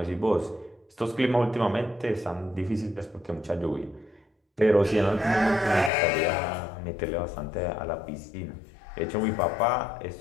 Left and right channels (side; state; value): right; drops out; at 5.9 s